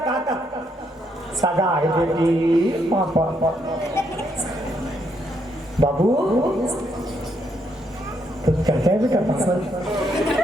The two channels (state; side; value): normal; both; correlation 0.75